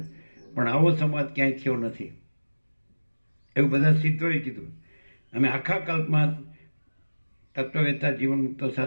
પણ આવો સંવાદ ક્યાંય થયો નથી. એવું બધા સિદ્ધોએ કીધું. અમે આખા કલ્પમાં તત્વવેત્તા જીવન મુક્તો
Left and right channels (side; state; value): both; inverted; correlation -1.00